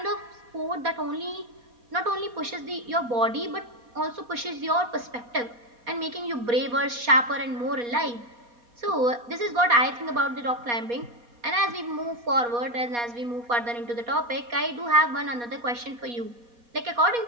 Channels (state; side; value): late; left; 4.2 ms